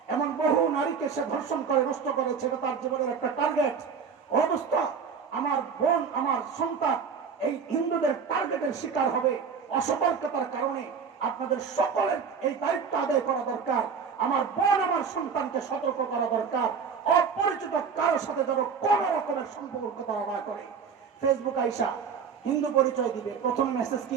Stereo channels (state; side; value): quieter; left; 6.2 dB